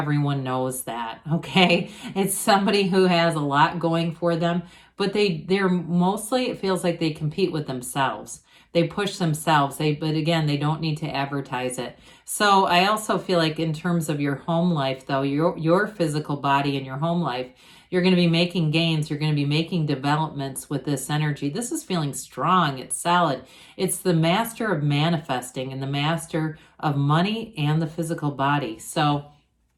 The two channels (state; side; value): identical; both; correlation 1.00